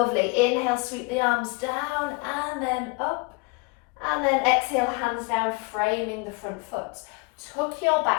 Inhale, sweep the arms down and then up. And then exhale, hands down, framing the front foot. Tuck your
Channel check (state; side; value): quieter; right; 29.1 dB